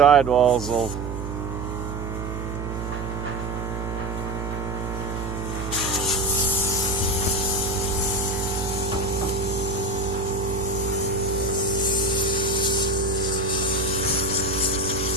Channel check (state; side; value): noise; right; hum, 6 dB below the sound